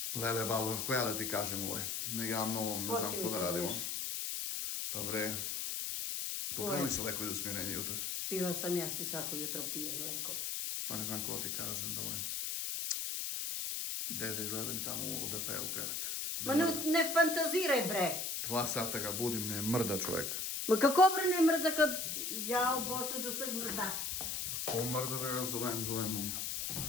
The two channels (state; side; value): noise; left; hiss, 2 dB below the sound